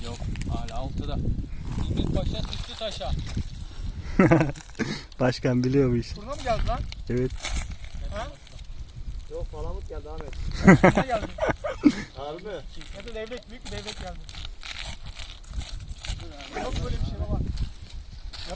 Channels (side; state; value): both; identical; correlation 1.00